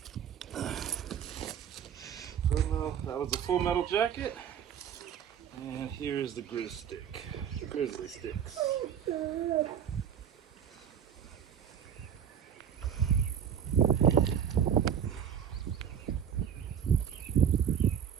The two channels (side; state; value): left; quieter; 8.6 dB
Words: That was the full metal jacket. And here's the Grizzlysticks.